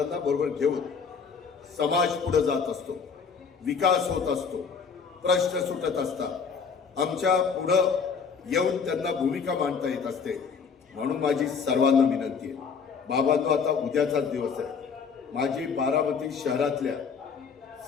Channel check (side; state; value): right; quieter; 5.8 dB